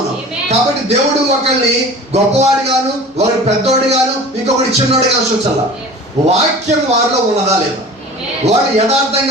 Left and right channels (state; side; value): normal; both; correlation 0.40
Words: కాబట్టి దేవుడు ఒకరిని గొప్పవాడి గాను, ఒకరి పెద్దోడి గాను, ఇంకొకటి చిన్నోడి గాను చూచాల. వాక్యం వారిలో ఉన్నదా లేదా, వాడు